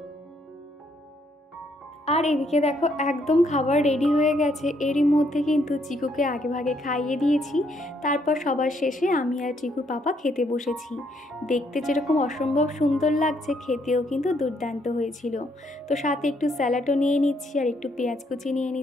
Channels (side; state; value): both; normal; correlation 0.71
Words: আর এদিকে দেখো একদম খাবার রেডি হয়ে গেছে, এরই মধ্যে কিন্তু চিকুকে আগে ভাগে খাইয়ে দিয়েছি। তারপর সবার শেষে আমি আর চিকুর পাপা খেতে বসেছি। দেখতে যেরকম অসম্ভব সুন্দর লাগছে, খেতেও কিন্তু দুর্দান্ত হয়েছিল। তো সাথে একটু স্যালাডও নিয়ে নিচ্ছি আর একটু পেঁয়াজ কুচি নিয়ে